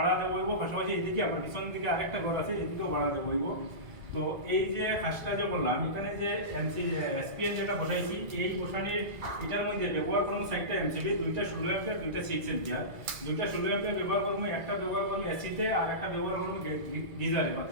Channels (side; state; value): left; late; 2.0 ms